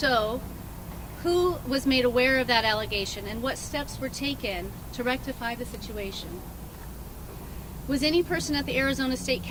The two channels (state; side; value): identical; both; correlation 1.00